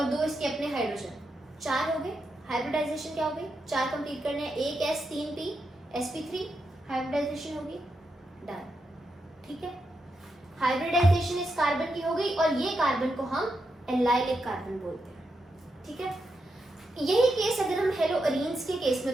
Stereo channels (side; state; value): both; normal; correlation 0.85